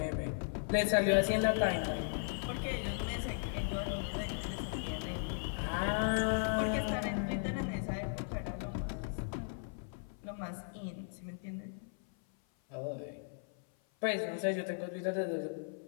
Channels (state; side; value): silent; right; 53 dB below the other